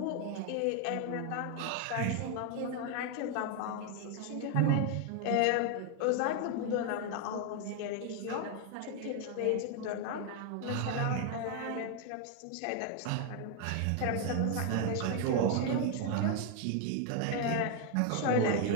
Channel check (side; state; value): both; different; correlation 0.00